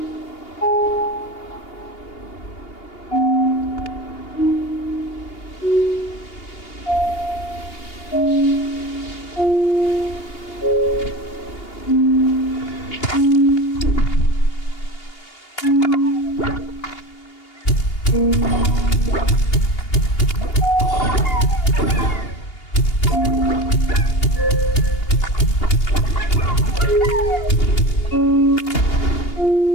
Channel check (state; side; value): late; right; 2.8 ms